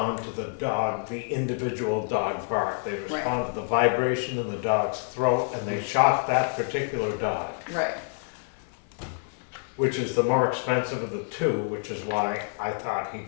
to the individual dog bark. They respond to the vibration in the dog's throat, and they shock that particular dog, Right. which is the more expensive of the two, which is why I thought he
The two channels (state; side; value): silent; right; 59 dB below the other